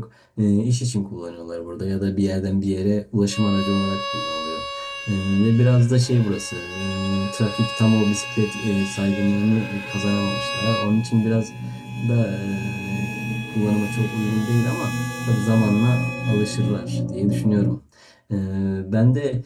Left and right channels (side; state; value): both; identical; correlation 1.00